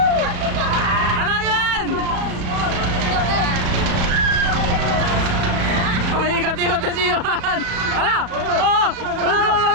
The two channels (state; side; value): late; left; 35 ms